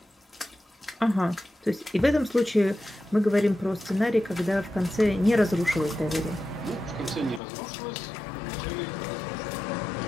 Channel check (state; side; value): drops out; right; at 7.4 s